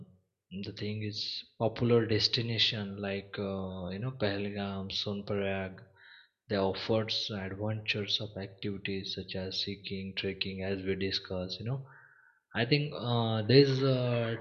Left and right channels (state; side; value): identical; both; correlation 1.00